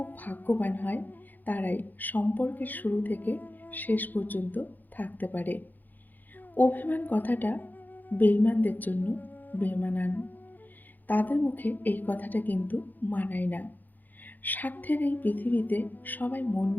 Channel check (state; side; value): late; right; 0.085 ms